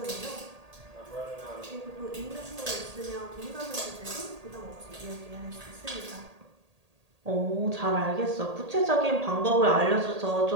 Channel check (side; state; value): left; late; 1.8 ms